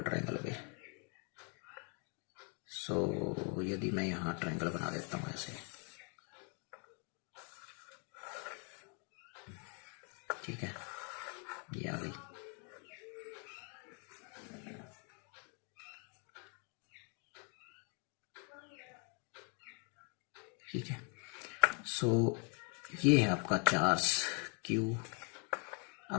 ट्रायंगल पे। सो यदि मैं यहाँ ट्रायंगल बना देता हूँ ऐसे, ठीक है, ये आ गई। ठीक है, सो ये है आपका चार्ज क्यू। अब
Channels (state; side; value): quieter; right; 38.2 dB